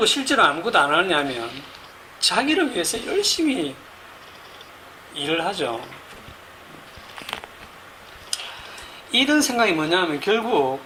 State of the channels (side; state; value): both; identical; correlation 1.00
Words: 실제로 아무것도 안 하냐면 자기를 위해서 열심히 일을 하죠. 이런 생각이 뭐냐면 결국